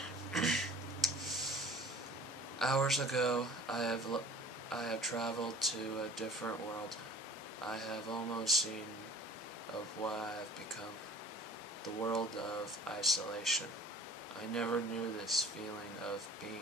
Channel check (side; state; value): both; normal; correlation 0.45